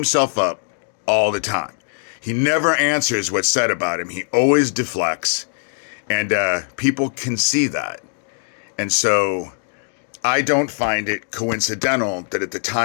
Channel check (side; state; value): right; silent; digital silence